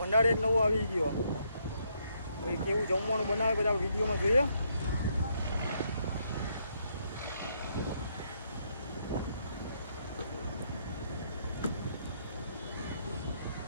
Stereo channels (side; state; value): both; inverted; correlation -0.74